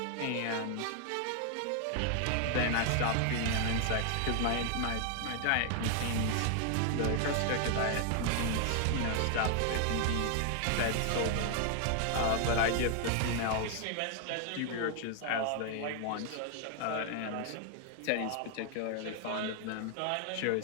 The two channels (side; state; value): both; different; correlation 0.00